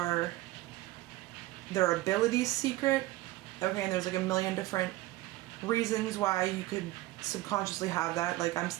their abilities secret. Okay, and there's like a million different reasons why you could subconsciously have that. Like I'm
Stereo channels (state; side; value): quieter; left; 17.8 dB